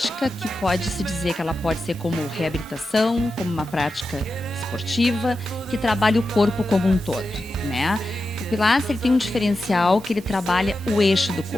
que pode-se dizer que ela pode ser como reabilitação, como uma prática esportiva, que trabalha o corpo como um todo, né? O Pilates ele tem um diferencial que ele trabalha o eixo do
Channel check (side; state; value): both; normal; correlation 0.90